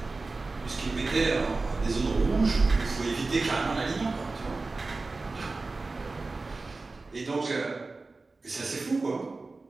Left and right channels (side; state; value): left; quieter; 3.6 dB